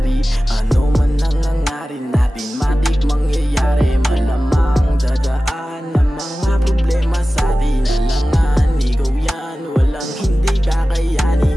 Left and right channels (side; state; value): both; normal; correlation 0.96